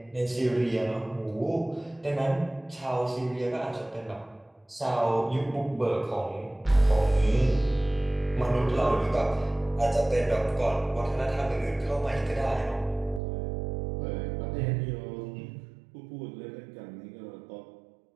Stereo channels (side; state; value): left; drops out; at 13.2 s